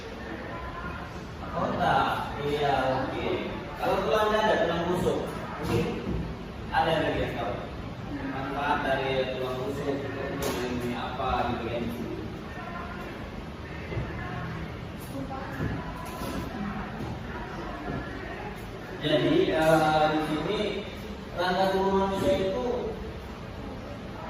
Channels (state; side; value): identical; both; correlation 1.00